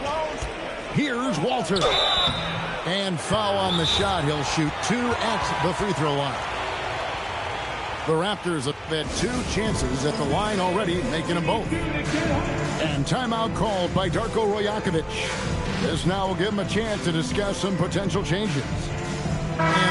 Here's Walter. And foul on the shot. He'll shoot 2 at the free throw line. The Raptors have had 2 chances at the line already, making them both. And timeout called by Darko Rajakovic. This now will give him a chance to discuss some potential changes.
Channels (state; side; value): identical; both; correlation 1.00